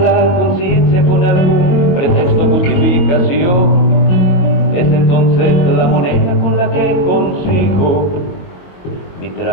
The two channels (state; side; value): late; right; 22 ms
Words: conciencia con algún pretexto o justificación. Es entonces la moneda con la que consigo mi